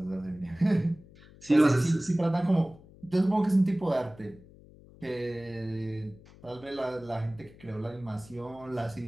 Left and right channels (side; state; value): left; noise; hum, 23 dB below the sound